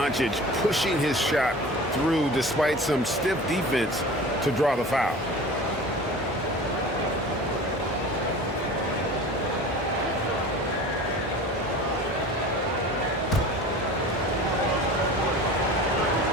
pushing his shot through despite some stiff defense to draw the foul.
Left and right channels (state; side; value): normal; both; correlation 0.38